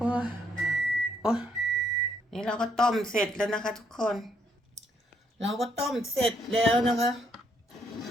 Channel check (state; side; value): normal; both; correlation 0.72